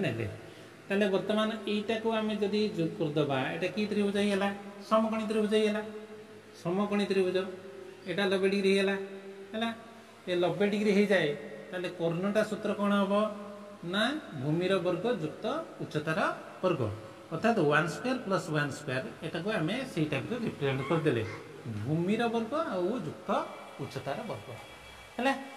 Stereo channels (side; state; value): both; identical; correlation 1.00